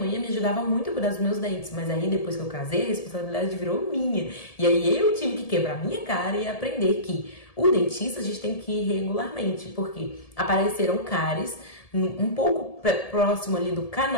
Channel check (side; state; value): right; late; 1.7 ms